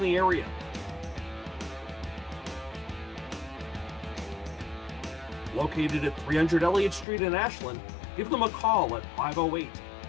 area. Located at 300 Elliott Street in Ashland, give them a call at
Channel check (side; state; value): right; drops out; at 7.1 s